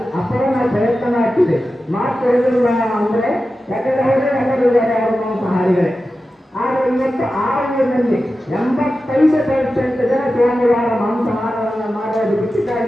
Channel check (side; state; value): both; normal; correlation 0.93